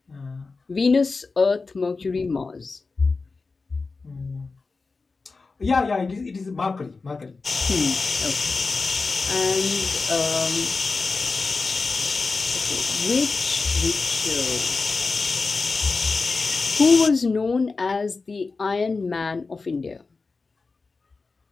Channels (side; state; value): right; quieter; 4.1 dB